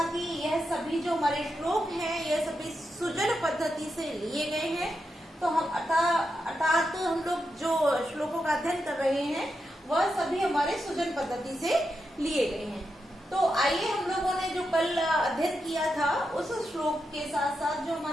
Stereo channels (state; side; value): normal; both; correlation 0.86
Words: कि यह सभी जो हमारे श्लोक हैं, यह सभी सुजन पद्धति से लिए गए हैं। तो हम अर्थात हम लोग जो श्लोकों का अध्ययन कर रहे हैं वह सभी हमारे सुजन पद्धति से लिए गए हैं। तो आइए हम लोगों ने जो कल अध्ययन किया था उस श्लोक के साथ साथ जो